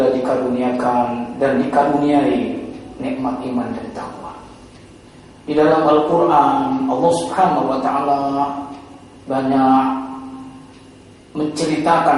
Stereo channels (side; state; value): both; identical; correlation 1.00